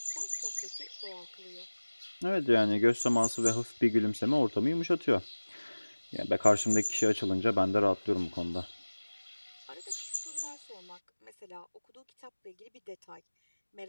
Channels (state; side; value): inverted; both; correlation -1.00